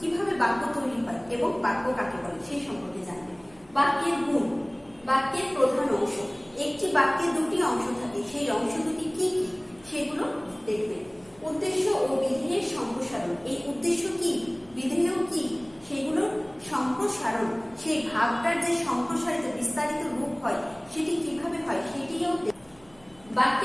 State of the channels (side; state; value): right; noise; hum, 28 dB below the sound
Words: বাক্য তৈরি হয় এবং বাক্য কাকে বলে সেই সম্পর্কে জানবে। বাক্যের গুণ, বাক্যের প্রধান অংশ, একটি বাক্যে দুটি অংশ থাকে, সেই অংশ দুটি কি কি সেগুলো দেখবে। উদ্দেশ্য ও বিধেয়ের সম্প্রসারণ, এই উদ্দেশ্য কি, বিধেয় কি, সেগুলোর সম্প্রসারণ, সেই ভাবটার যে সম্প্রসারিত বিস্তারিত রূপ হয় সেটি কিভাবে হয় সেটিও।